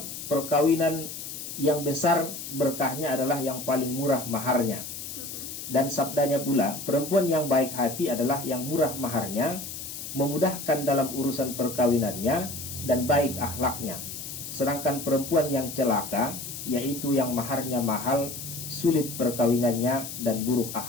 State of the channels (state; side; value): noise; left; hiss, 9 dB below the sound